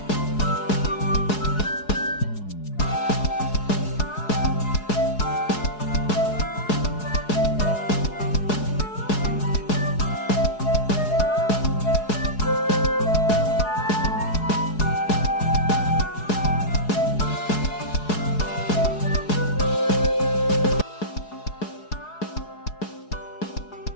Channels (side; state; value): right; late; 4.7 ms